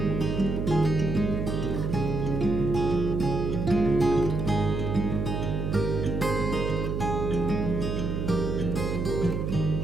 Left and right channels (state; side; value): noise; right; hum, 1 dB below the sound